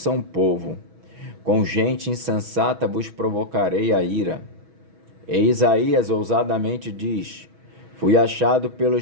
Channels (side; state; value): left; late; 6.2 ms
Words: povo. Com gente insensata vos provocarei a ira. E Isaías ousadamente diz, fui achado